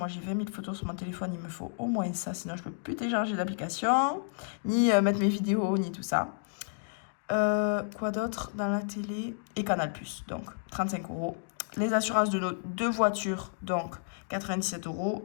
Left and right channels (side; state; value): right; silent; digital silence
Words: j'ai 20 000 photos sur mon téléphone. Il me faut au moins ça. Sinon, je ne peux plus télécharger d'application, ni mettre mes vidéos, ni tout ça. Quoi d'autre dans la télé? Et Canal+. Donc, 35 euros. Les assurances de nos 2 voitures. Donc, 97